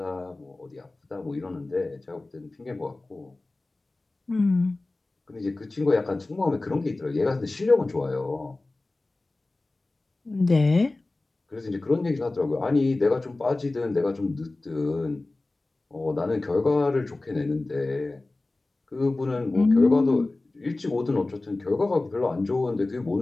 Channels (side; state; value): right; quieter; 3.1 dB